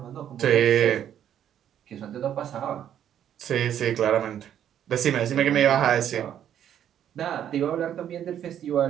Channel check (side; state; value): left; quieter; 10.1 dB